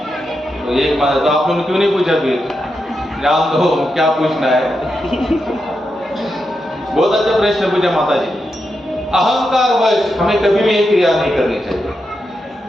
तो एक बात तो आप लोगों ने क्यों नहीं पूछा, फिर जान दो क्या पूछना है। बहुत अच्छा प्रश्न पूछा माता जी। अहंकार वश हमें कभी भी ये क्रिया नहीं करनी चाहिए।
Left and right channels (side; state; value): both; normal; correlation 0.86